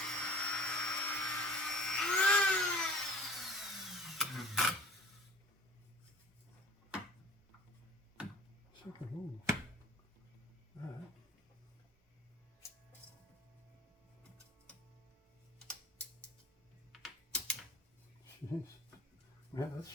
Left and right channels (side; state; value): both; normal; correlation 0.45